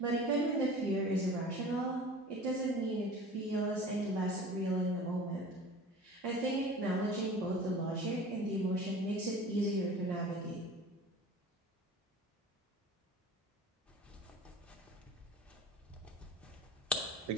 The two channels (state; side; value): normal; both; correlation 0.40